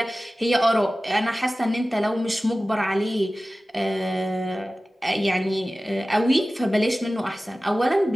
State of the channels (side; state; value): both; normal; correlation 0.96